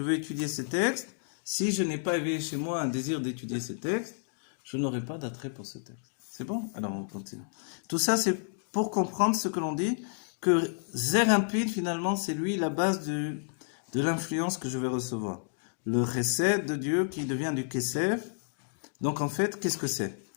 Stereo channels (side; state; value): right; silent; digital silence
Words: veux étudier ces textes. Si je n'ai pas éveillé chez moi un désir d'étudier ces textes, je n'aurai pas d'attrait pour ce texte. C'est bon? Alors on continue. Tout ça, c'est pour comprendre ce que l'on dit, que Zer Impid, finalement, c'est lui la base de l'influence que je vais recevoir. Le chesed de Dieu qui devient du kesef. Donc en fait, qu'est-ce que c'est?